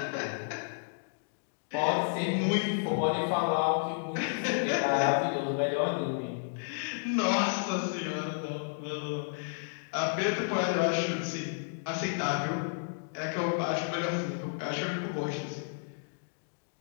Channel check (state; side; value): silent; right; digital silence